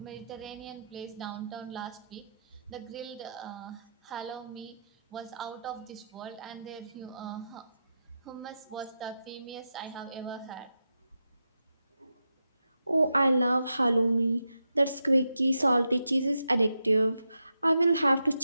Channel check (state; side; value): inverted; both; correlation -0.87